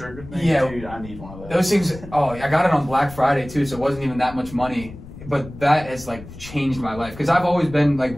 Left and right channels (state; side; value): noise; left; rumble, 15 dB below the sound